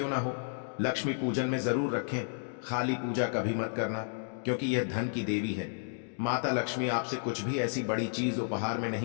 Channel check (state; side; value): silent; right; digital silence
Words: ना हो, लक्ष्मी पूजन में जरूर रखें। खाली पूजा कभी मत करना, क्योंकि यह धन की देवी है। माता लक्ष्मी आपसे कुछ भी ऐसी बड़ी चीज उपहार में